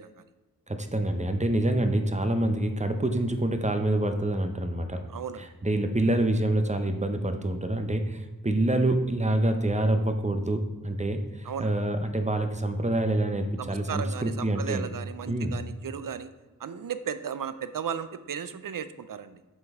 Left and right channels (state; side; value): normal; both; correlation 0.74